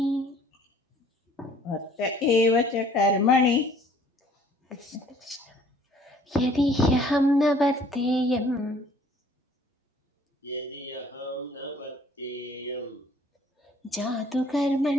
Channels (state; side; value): normal; both; correlation 0.56